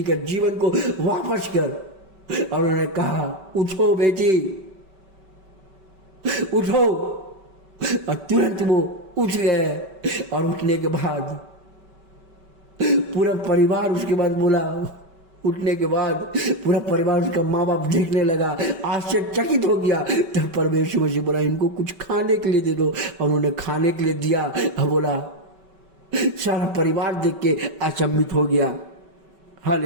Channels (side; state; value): left; late; 5.2 ms